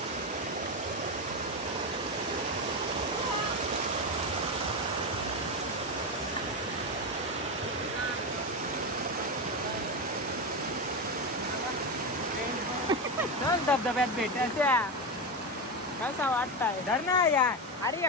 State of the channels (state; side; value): normal; both; correlation 0.15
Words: धबधब्यात भेटायच्या कसा वाटताय धर ना यार. अरे